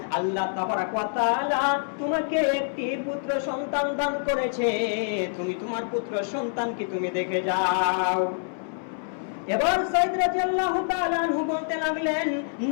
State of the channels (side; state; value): right; silent; 61 dB below the other